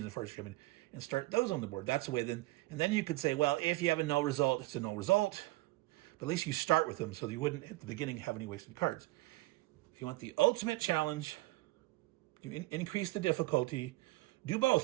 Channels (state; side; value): quieter; left; 19.9 dB